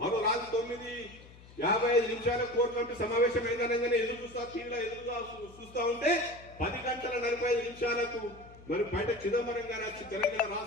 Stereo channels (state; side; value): noise; left; hum, 21 dB below the sound